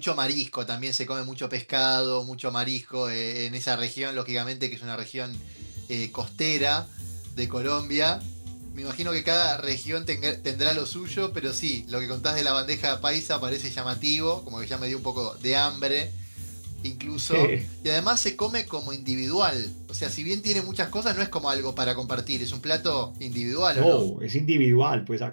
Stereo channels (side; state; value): both; inverted; correlation -1.00